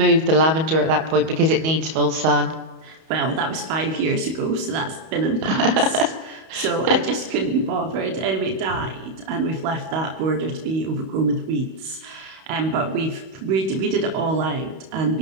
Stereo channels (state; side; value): late; left; 31 ms